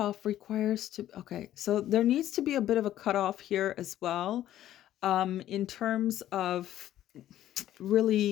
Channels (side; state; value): right; quieter; 12.7 dB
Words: requires to, okay, so there needs to be a bit of a cutoff here as well, in terms of